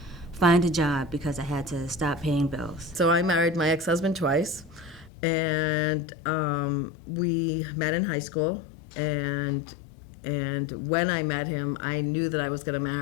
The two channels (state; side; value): drops out; right; at 5.1 s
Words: find a job because I had to stop paying bills. So I married my ex-husband twice, and we met in high school, and when I met him, I knew that I was going to